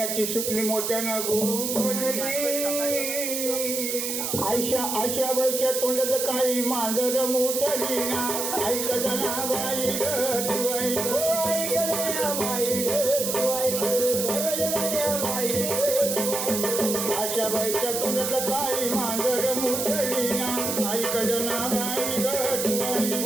सुपली मोत्यानं गोपली. आयशा बाईच्या तोंडाचं काही मांजर मोठली ना. ऐकत ना बाई ग तू आशा बाईच्या तोंडाचं काही मांजर मोठली ना. ऐकत ना बाई ग तू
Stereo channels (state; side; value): noise; right; hiss, 2 dB below the sound